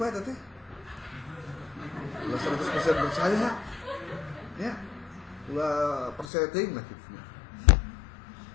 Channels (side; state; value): right; drops out; at 6.2 s